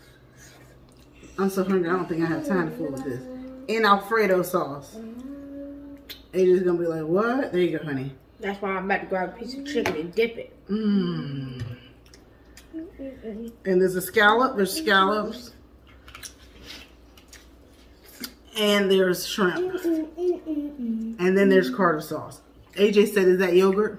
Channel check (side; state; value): both; identical; correlation 1.00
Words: I'm so hungry, I don't think I have time to fool with this. In Alfredo sauce. AJ's gonna be like, what? There you go, honey. That's why I'm about to grab a piece of chicken and dip it. Mmm. And there's a scallop, there's scallops. And there's shrimp. And then there's Carter sauce. AJ said, is that yogurt?